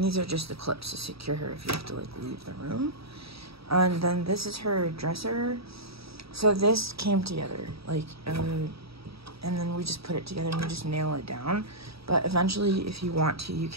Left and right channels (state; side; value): late; left; 0.77 ms